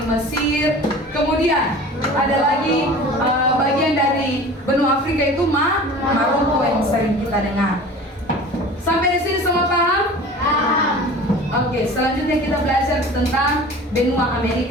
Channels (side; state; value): both; normal; correlation 0.40